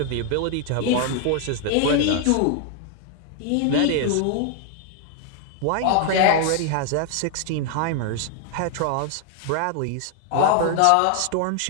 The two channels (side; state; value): both; different; correlation 0.00